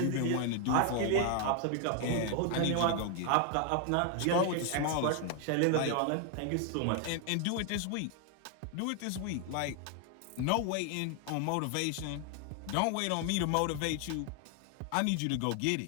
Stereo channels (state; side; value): different; both; correlation 0.00